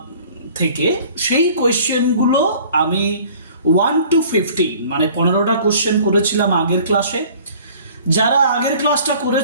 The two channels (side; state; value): both; inverted; correlation -0.50